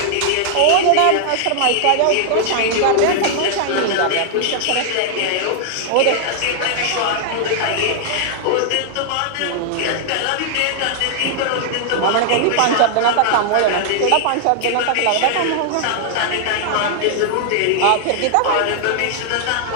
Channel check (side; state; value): both; different; correlation 0.00